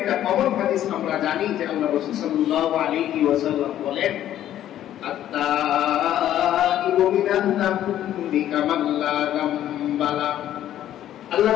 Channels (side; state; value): right; quieter; 11.9 dB